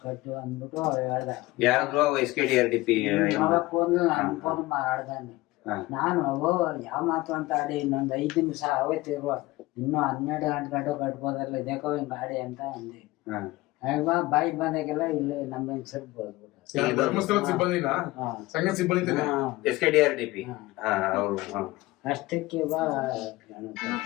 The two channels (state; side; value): quieter; right; 19.6 dB